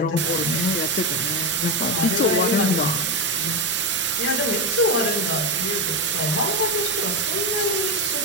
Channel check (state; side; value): normal; both; correlation 0.11